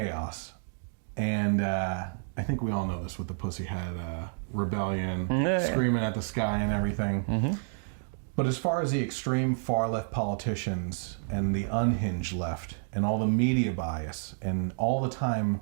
and I think we all know this with the Pussyhead rebellion, screaming at the sky and everything. Mm-hmm. But as far as the extreme far-left politicians and the unhinged left and all the media bias and all the time,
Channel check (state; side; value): silent; left; digital silence